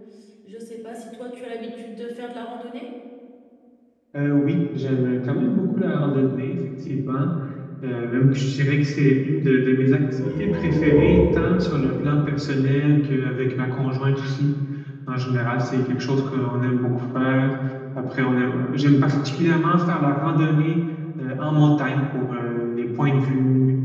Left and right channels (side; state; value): both; identical; correlation 1.00